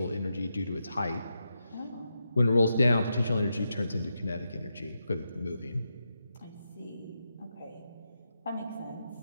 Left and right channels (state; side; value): inverted; both; correlation -0.86